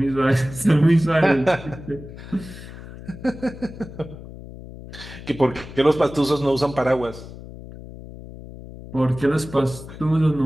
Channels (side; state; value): left; noise; hum, 14 dB below the sound